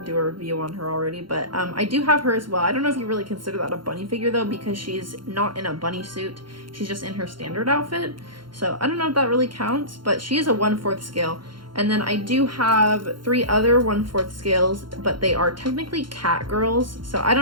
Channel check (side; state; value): left; late; 0.72 ms